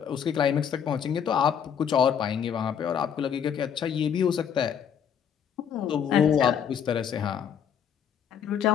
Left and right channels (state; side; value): quieter; right; 8.2 dB